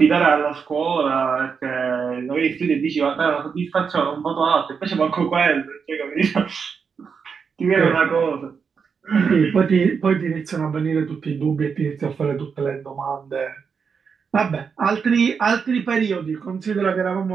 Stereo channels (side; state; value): left; quieter; 6.0 dB